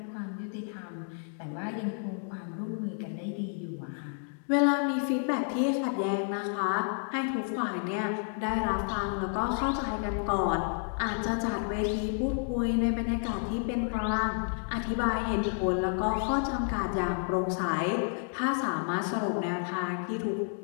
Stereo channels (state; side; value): silent; right; 57 dB below the other